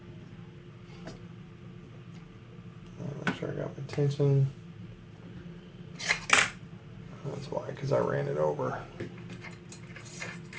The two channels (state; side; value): identical; both; correlation 1.00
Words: Make sure I got my tension. That's why, because I ran it over.